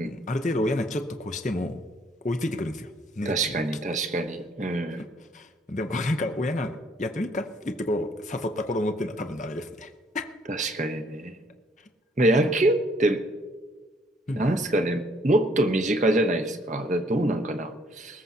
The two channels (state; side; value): normal; both; correlation 0.65